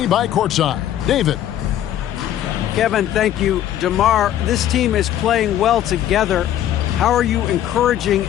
by courtside. David. Kevin, thank you. DeMar, this team is playing well together. How are you encouraging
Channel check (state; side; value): quieter; right; 11.6 dB